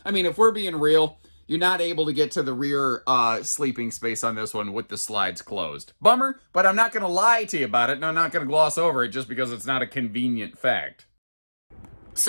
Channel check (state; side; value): inverted; both; correlation -1.00